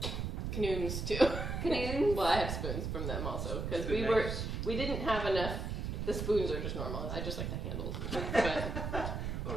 canoons too. Canoons? Well, I have spoons from them also because Good we didn't have enough. The spoons are just normal. I just like the handles. But Oh,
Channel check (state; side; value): noise; right; rumble, 3 dB below the sound